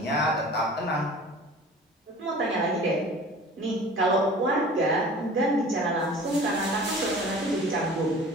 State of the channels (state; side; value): normal; both; correlation 0.43